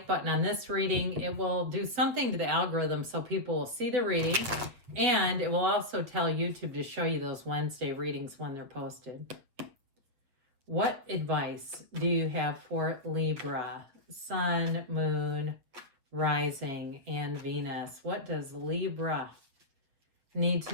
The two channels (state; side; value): late; left; 8.2 ms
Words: button on this reading, it will do something to the algorithm so people will see the reading, and it will also tell YouTube to show you those Wednesday readings when they're posted. What advice do you have for Libra, Sun, Moon, Rising, and Venus? What does Libra need